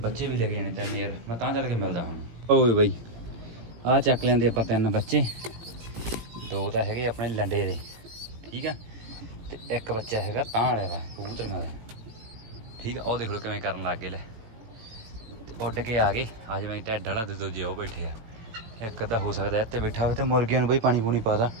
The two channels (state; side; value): late; left; 18 ms